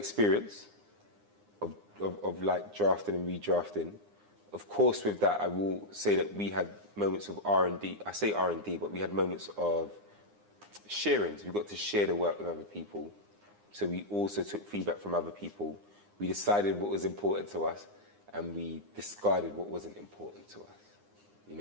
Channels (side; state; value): left; late; 9.8 ms